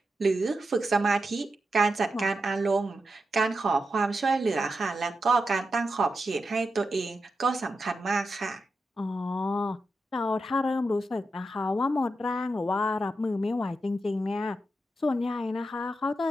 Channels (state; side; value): normal; both; correlation 0.88